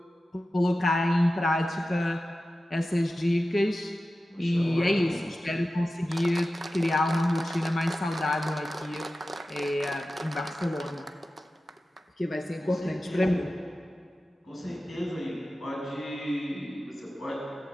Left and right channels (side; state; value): both; normal; correlation 0.94